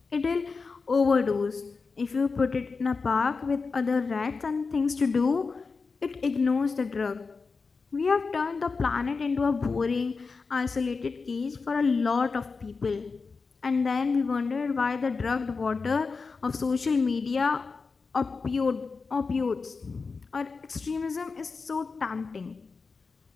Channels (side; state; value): right; quieter; 4.6 dB